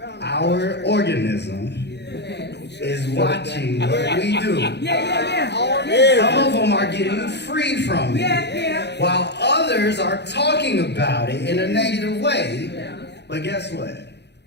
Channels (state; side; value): late; right; 0.50 ms